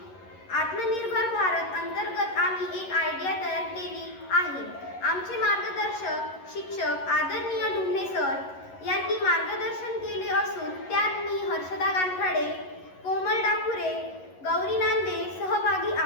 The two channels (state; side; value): late; right; 11 ms